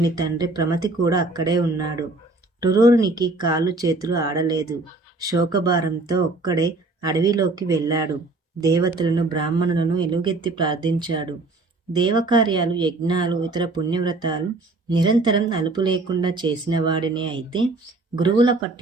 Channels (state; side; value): quieter; left; 3.2 dB